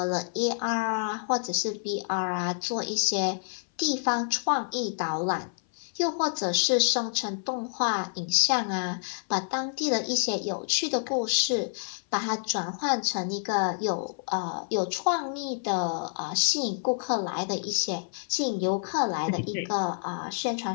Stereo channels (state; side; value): silent; right; 57 dB below the other